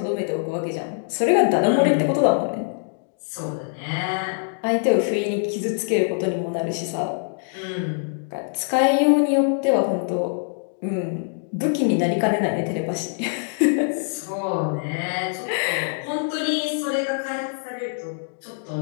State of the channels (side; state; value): right; silent; digital silence